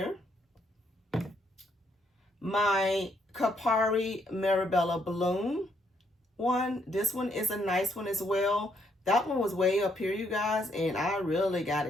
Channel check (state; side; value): normal; both; correlation 0.73